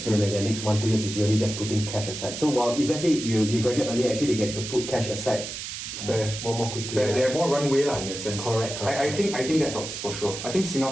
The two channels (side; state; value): right; noise; hiss, 7 dB below the sound